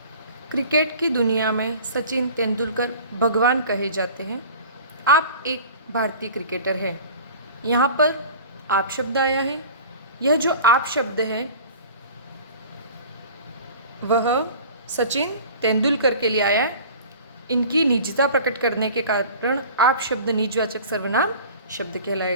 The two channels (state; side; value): inverted; both; correlation -0.42